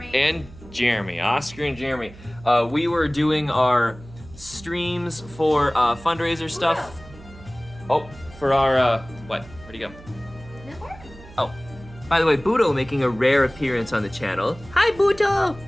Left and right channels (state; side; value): noise; right; hum, 19 dB below the sound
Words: Jeremy. Oscar and Jeremy. We were doing our streams for fundraiser stuff. Oh, for our what? Where'd he go? Oh, by the way, Buto making a rare appearance on the channel. Hi, Buto.